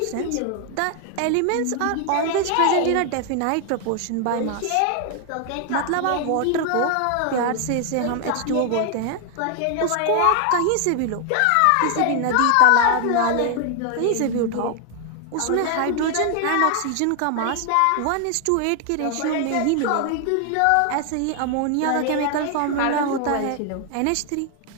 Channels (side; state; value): both; different; correlation 0.00